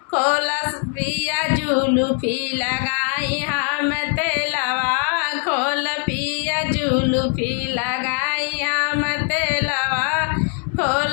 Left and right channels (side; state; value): right; quieter; 36.8 dB